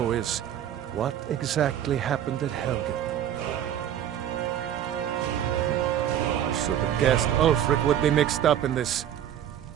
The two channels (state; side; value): quieter; left; 10.4 dB